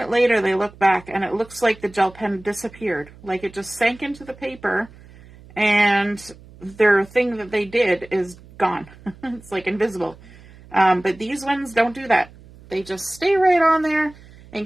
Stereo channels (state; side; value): noise; right; hum, 22 dB below the sound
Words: later they look back and it looks like the gel pen disappeared, like it just sank into the paper and their thing that they did is gone. It's like invisible. But these ones don't do that. They just stay right on there and